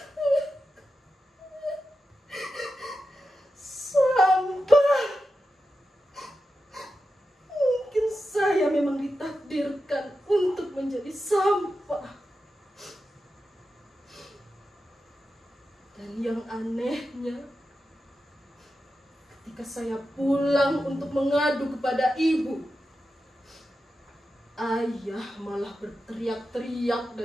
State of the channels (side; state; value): both; normal; correlation 0.90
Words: Sampah. Mungkin saya memang ditakdirkan untuk menjadi sampah. Dan yang anehnya, ketika saya pulang untuk mengadu kepada ibu, ayah malah berteriak-teriak